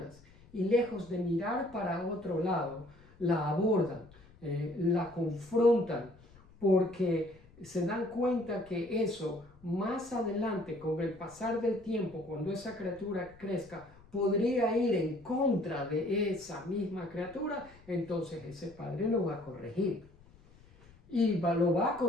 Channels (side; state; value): left; noise; rumble, 25 dB below the sound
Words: y lejos de mirar para otro lado, la abordan, la confrontan, porque se dan cuenta que eso más adelante, con el pasar del tiempo, cuando esa criatura crezca, podría ir en contra de esa misma criatura, entonces ese padre lo va a corregir. Y lo va a